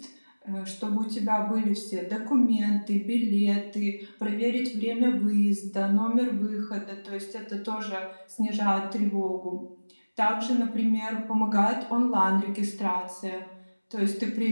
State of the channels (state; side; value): inverted; both; correlation -1.00